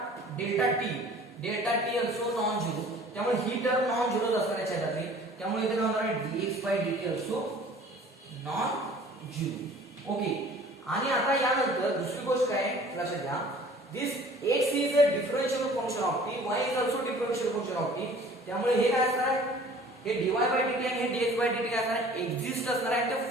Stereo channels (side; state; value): both; normal; correlation 0.49